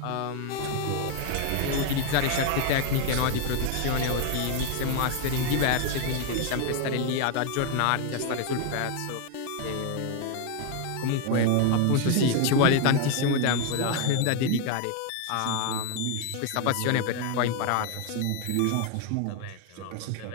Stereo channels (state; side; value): different; both; correlation 0.01